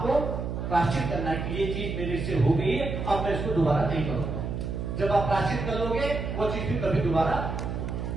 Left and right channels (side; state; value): right; noise; hum, 4 dB below the sound